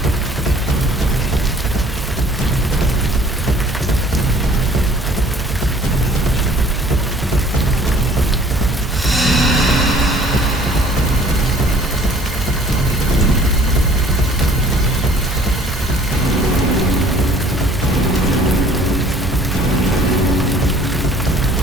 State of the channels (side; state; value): both; normal; correlation 0.54